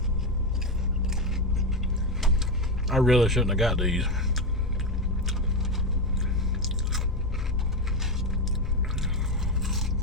I really shouldn't have got these.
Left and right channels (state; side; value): normal; both; correlation 0.11